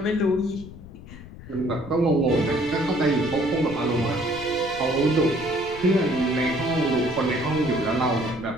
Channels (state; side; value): noise; left; rumble, 16 dB below the sound